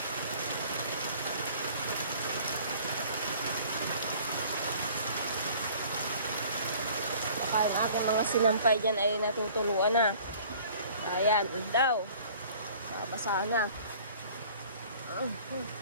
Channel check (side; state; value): both; inverted; correlation -0.50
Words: Baka ang aking mga sinampay dyan ay natutuluan na. Ayan, daw. Basa na.